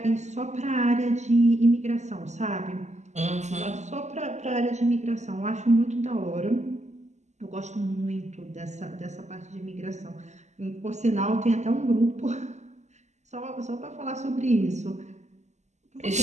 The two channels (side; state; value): left; late; 0.33 ms